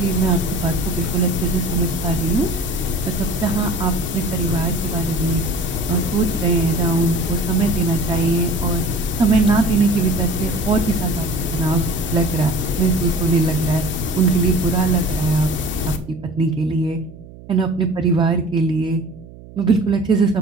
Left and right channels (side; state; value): right; noise; hum, 19 dB below the sound